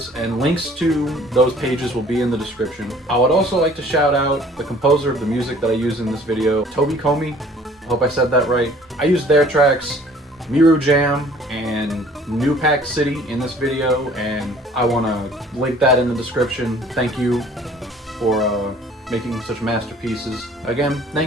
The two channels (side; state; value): both; normal; correlation 0.53